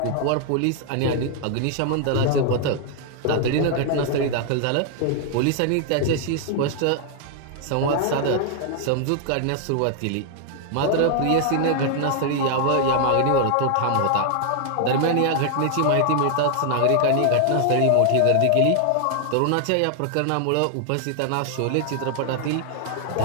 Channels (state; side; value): different; both; correlation 0.00